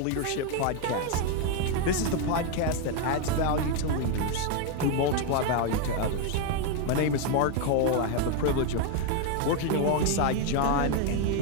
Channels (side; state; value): both; different; correlation 0.02